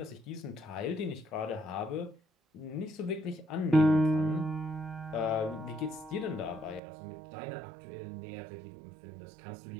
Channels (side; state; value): left; drops out; at 6.8 s